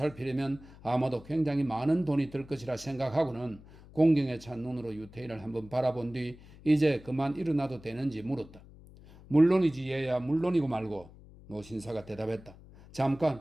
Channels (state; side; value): noise; left; hum, 21 dB below the sound